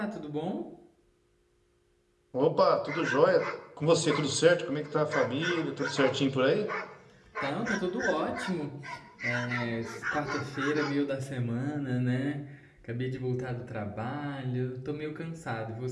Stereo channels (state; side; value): identical; both; correlation 1.00